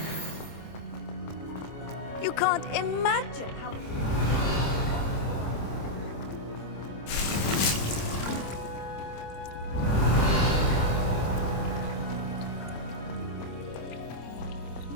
You can't imagine how...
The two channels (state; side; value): late; right; 26 ms